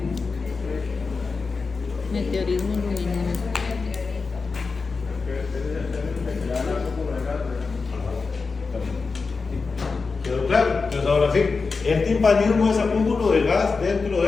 Meteorismo luminoso. ¿Quedó claro? Entonces ahora sí, el timpanismo es acúmulo de gas dentro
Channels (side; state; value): right; quieter; 4.5 dB